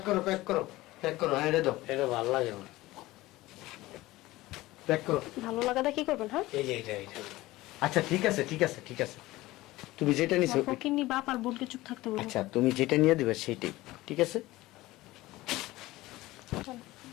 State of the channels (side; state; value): right; quieter; 18.3 dB